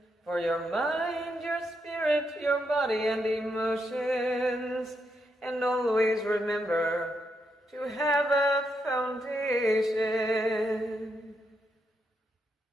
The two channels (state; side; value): normal; both; correlation 0.81